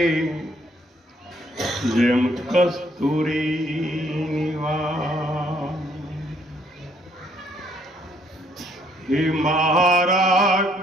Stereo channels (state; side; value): normal; both; correlation 0.67